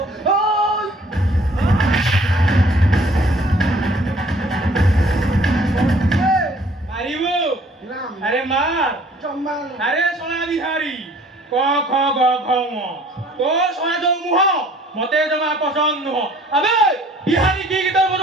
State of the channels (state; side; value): normal; both; correlation 0.55